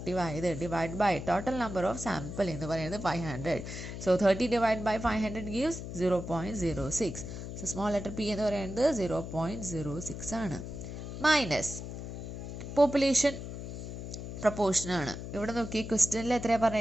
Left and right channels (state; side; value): noise; left; hum, 8 dB below the sound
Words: ആയത്. Divide by total number of sample എന്ന് പറയുന്നത് 500. So 30 divide by 500 gives 0.06. So small letter P എന്ന് പറയുന്നത് 0.06 ആണ്. മൈനസ് പോപ്പുലേഷൻ പ്രൊപ്പോർഷൻ ആണ്. ഇവിടെ നോക്കി ക്വസ്റ്റ്യനിൽ എത്രയാണ്